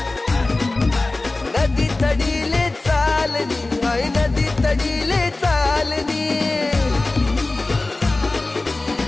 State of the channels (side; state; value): right; quieter; 3.1 dB